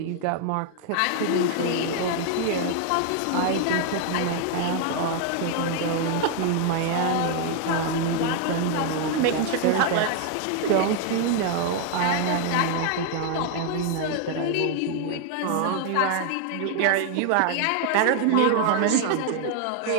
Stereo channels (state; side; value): different; both; correlation 0.00